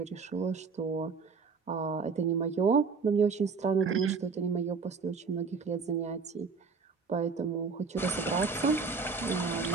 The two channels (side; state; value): left; quieter; 5.0 dB